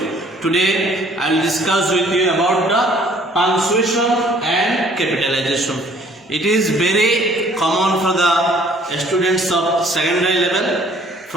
Today I will discuss with you about the punctuation and capitalization. It is very common for the students of secondary level.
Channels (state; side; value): normal; both; correlation 0.58